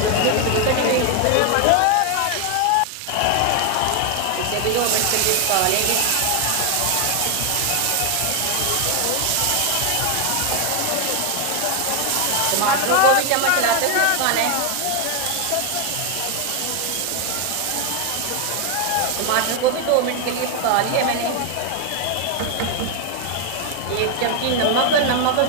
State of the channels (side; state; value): both; different; correlation 0.01